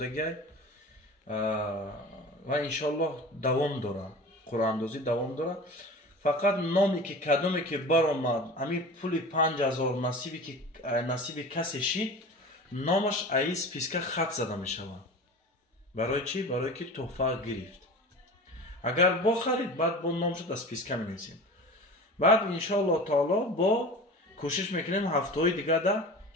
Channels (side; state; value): both; normal; correlation 0.35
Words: و انشالله دوام داره، قرعه اندازی دوام داره. فقط نامی که کدومی که برآمد همین پول 5000 نصیب کسی شید نامش ای سپیسکا خط زده می شود. برای چی؟ برای که تحفه گرفت. اگر با خرید بعد با نامش در سپیسکا می نویسیم. بعد انشالله تعالی با کوشش میکنیم هفته های دیگه ده